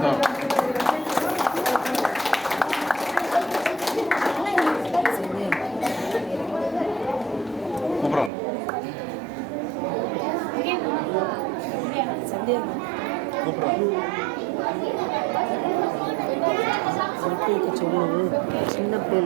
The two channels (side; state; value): left; drops out; at 8.3 s